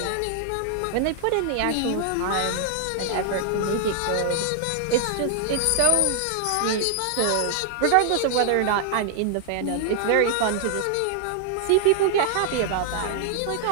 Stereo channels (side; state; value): both; different; correlation 0.00